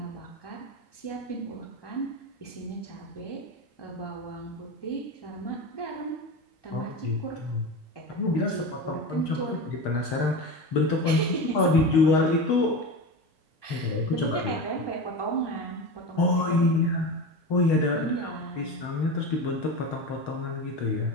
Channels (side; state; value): right; late; 1.2 ms